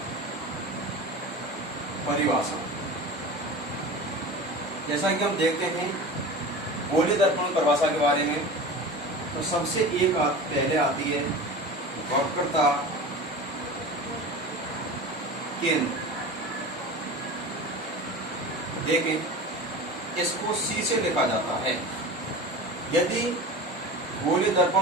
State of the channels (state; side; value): normal; both; correlation 0.33